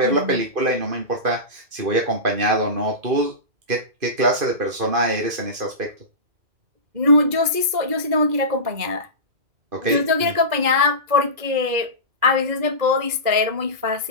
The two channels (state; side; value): late; left; 2.0 ms